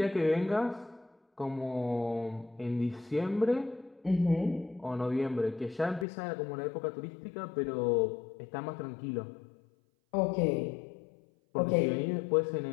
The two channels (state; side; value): drops out; right; at 6.1 s